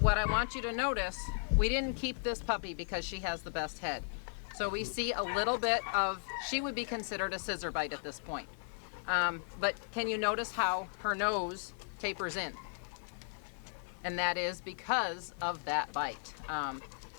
what I want you to notice, we didn't keep this puppy because she has the best head. So we see a little bit of, she would be considered a scissor bite at this point. But can you notice how her nose tapers in? And that is because of that bite.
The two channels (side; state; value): right; silent; digital silence